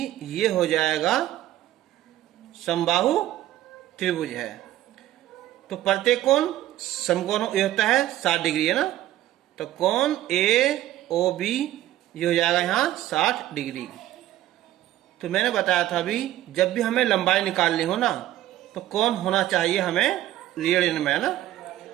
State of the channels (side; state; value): left; quieter; 14.1 dB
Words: ये हो जाएगा समबाहु त्रिभुज है। तो प्रत्येक कोण समकोण ये होता है 60 डिग्री है ना, तो कोण ए ओ बी ये हो जाएगा यहाँ 60 डिग्री। तो मैंने बताया था अभी, जब भी हमें लंबाई निकालनी हो ना, तो कोण होना चाहिए हमें रेडियन में, है ना।